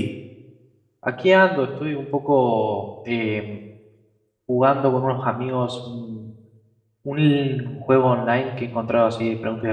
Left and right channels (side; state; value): both; identical; correlation 1.00